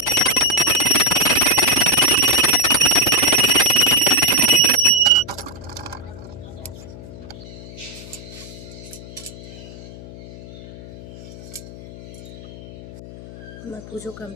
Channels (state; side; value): noise; left; hum, 16 dB below the sound